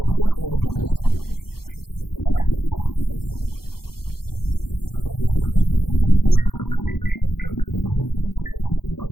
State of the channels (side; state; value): right; late; 0.94 ms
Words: this corner in just a moment.